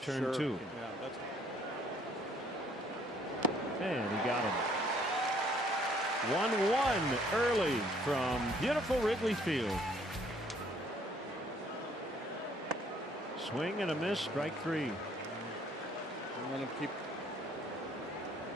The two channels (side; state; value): both; normal; correlation 0.62